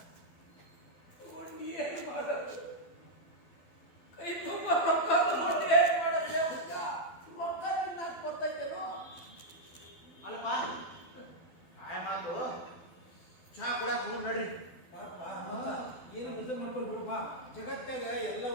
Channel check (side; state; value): right; late; 12 ms